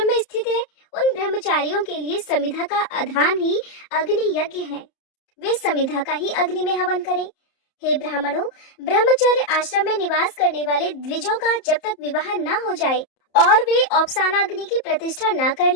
में स्थित है उन ब्रह्मचारियों के लिए समिधा का आधान ही अग्नि यज्ञ है। वे समिधा का ही अग्नि में हवन करें। हे ब्राह्मणों, ब्रह्मचर्य आश्रम में निवास करने वाले द्विजों का जब तक विवाह न हो जाए और वे औपसानाग्नि की प्रतिष्ठा न कर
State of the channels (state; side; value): late; right; 31 ms